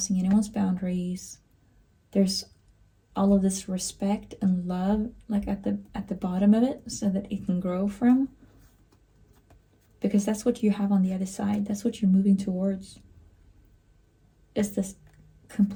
anyone's boundaries. There's all of this respect and love like at the bottom of it, so that it can grow from. Because that's what you have on the other side. That's what you're moving towards. It's this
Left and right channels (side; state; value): both; identical; correlation 1.00